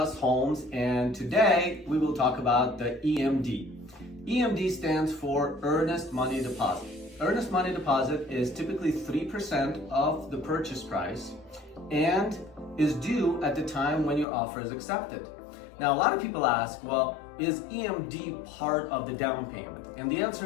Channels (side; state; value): right; drops out; at 14.2 s